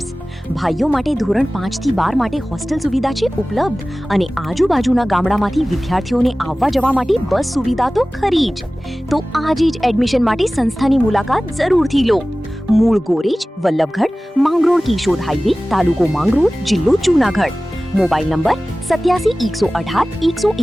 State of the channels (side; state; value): both; normal; correlation 0.97